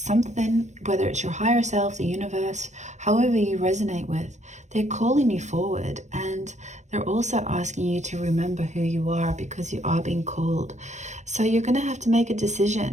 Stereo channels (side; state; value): left; late; 0.34 ms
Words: whether it's your higher self, the universe, however you resonate with, they're calling you forward, and they're also asking you to remember who you are, because you are being called. So you're going to have to make a